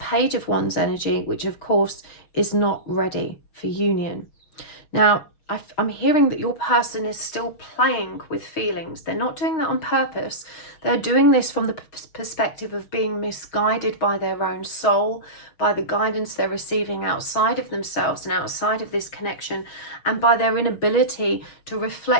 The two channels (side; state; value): right; late; 6.4 ms